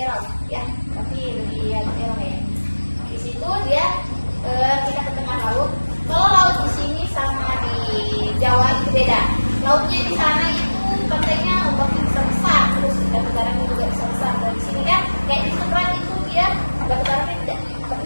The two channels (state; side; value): inverted; both; correlation -1.00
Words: ya tapi lebih ya erau ya. Di situ dia kita ke tengah laut. Kalau laut di sini sama di Jawa itu beda. Lautnya di sana itu pantainya ombaknya besar, terus batu karangnya juga besar. Dan di sini kan kayak di Seberang itu dia batu karangnya tidak